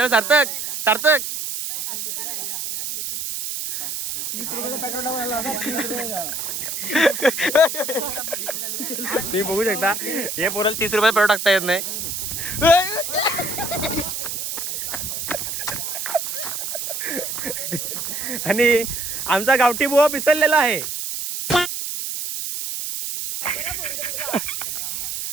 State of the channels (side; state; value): right; noise; hiss, 4 dB below the sound